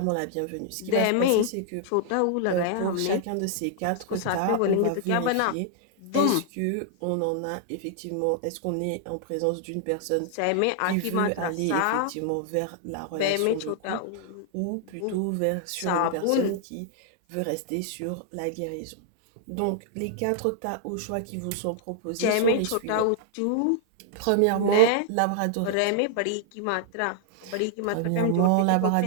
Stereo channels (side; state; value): both; different; correlation -0.01